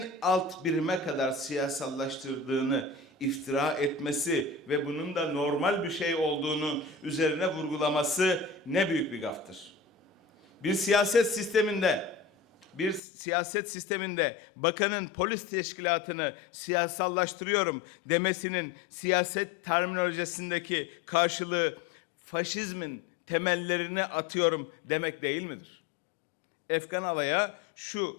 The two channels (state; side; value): drops out; right; at 13.0 s